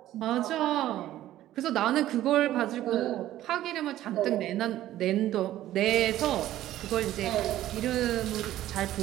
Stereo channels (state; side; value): quieter; left; 13.7 dB